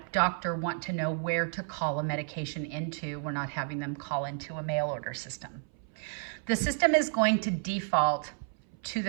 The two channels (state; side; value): silent; left; 57 dB below the other